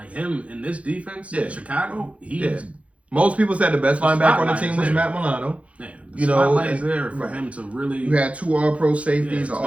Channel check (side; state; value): left; late; 0.064 ms